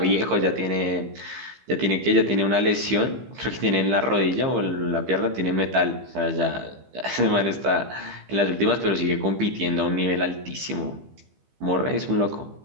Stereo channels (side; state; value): left; late; 15 ms